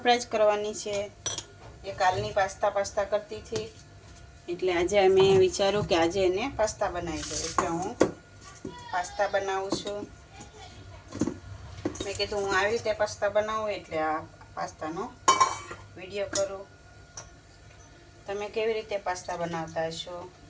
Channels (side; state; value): both; identical; correlation 1.00